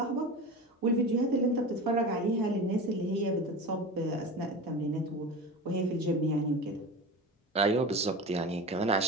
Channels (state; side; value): normal; both; correlation 0.29